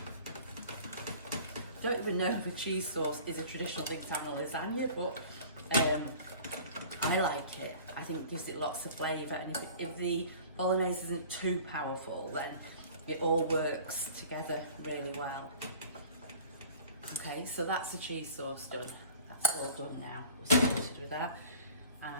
don't even know if a cheese sauce is a traditional thing to have in a lasagna, but I like it. I think it gives it lots of flavour, and if the bolognese isn't too powerful, then it all works together really well. Okay, so that's the cheese sauce done. That's all done now. We're sorted with that. And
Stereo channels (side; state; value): both; inverted; correlation -0.44